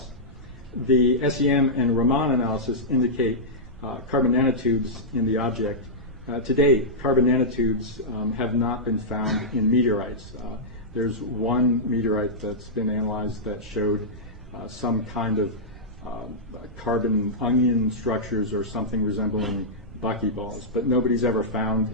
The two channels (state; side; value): normal; both; correlation -0.11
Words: The SEM and Raman analysis indicate carbon nanotubes in the object. To date, carbon nanotubes have not been found in meteorites. There's one meteorite that's been analyzed that showed some kind of carbon onion structures or something resembling buckyballs, but nobody's ever found